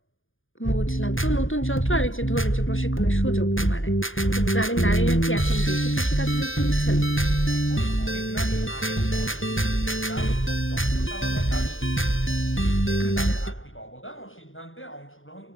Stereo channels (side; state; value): right; late; 0.58 ms